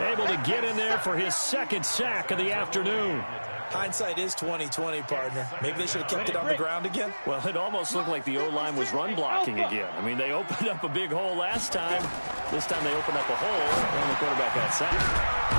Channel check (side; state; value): both; inverted; correlation -1.00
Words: able to get in there for his 2nd sack of the afternoon. Hindsight is 20/20, partner. Maybe they should have kept it on the ground again. Well, it almost looked like the O-line was run blocking again. I mean, they opened up a big hole last time. This time they opened up a hole, and the quarterback got